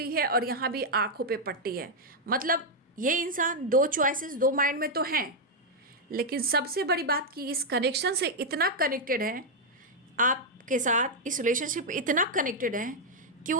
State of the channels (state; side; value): normal; both; correlation -0.02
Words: है और यहाँ भी आंखों पे पट्टी है, मतलब ये इंसान 2 चॉइसेस, 2 माइंड में तो हैं, लेकिन सबसे बड़ी बात कि इस कनेक्शन से इतना कनेक्टेड है आपके साथ, इस रिलेशनशिप इतना कनेक्टेड है कि